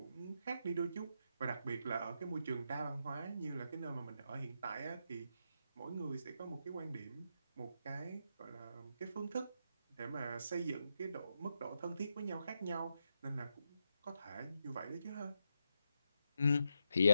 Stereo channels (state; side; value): inverted; both; correlation -0.84